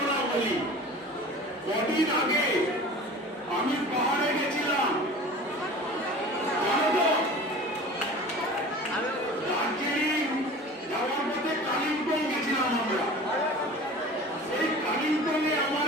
বলি। কদিন আগে আমি পাহাড়ে গেছিলাম, দার্জিলিং যাওয়ার পথে কালিম্পং গেছিলাম আমরা। সেই কালিম্পংয়ে আমার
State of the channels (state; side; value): normal; both; correlation 0.40